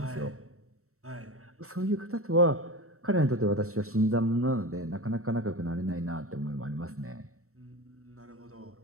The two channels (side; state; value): left; late; 0.64 ms